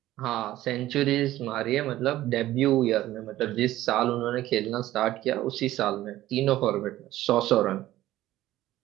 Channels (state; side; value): quieter; left; 15.0 dB